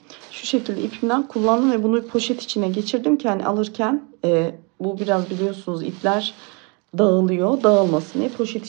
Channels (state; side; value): quieter; left; 32.5 dB